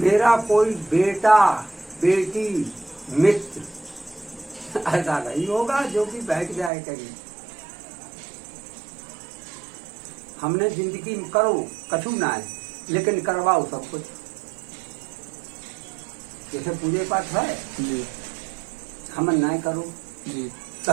मेरा कोई बेटा बेटी मित्र ऐसा नहीं होगा जो कि बैठ जाए कहीं। हमने जिंदगी में करो कछु ना है, लेकिन करवाओ सब कुछ। जैसे पूजे पाठ है जी हम नहीं करो जी तो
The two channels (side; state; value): left; drops out; at 6.7 s